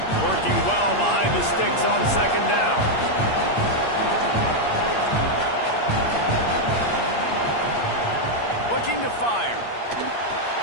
Working well behind the sticks on second down. Looking to fire.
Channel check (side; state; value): right; late; 8.6 ms